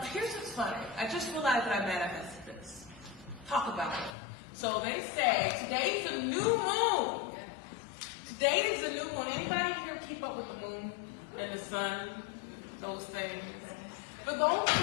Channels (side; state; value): right; drops out; at 4.2 s